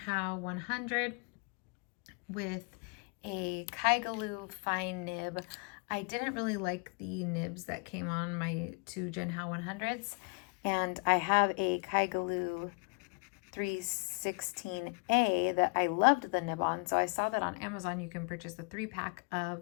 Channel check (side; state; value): right; quieter; 33.1 dB